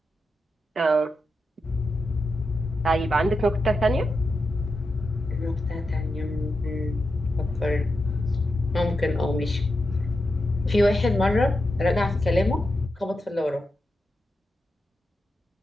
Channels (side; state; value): both; normal; correlation 0.88